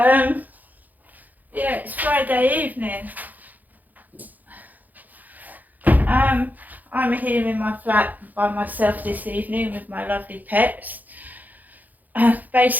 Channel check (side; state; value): left; late; 0.082 ms